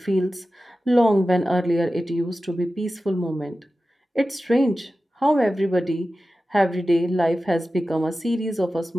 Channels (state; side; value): normal; both; correlation 0.94